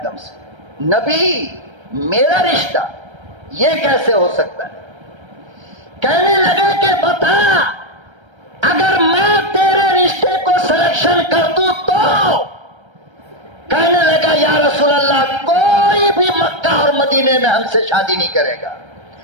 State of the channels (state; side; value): late; left; 1.3 ms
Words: دم سے. نبی میرا رشتہ یہ کیسے ہو سکتا ہے؟ کہنے لگے کہ بتا اگر میں تیرے رشتے کو سلیکشن کر دوں تو؟ کہنے لگا یا رسول اللہ کوئی بھی مکہ اور مدینے میں ہم سے شادی نہیں کرے گا.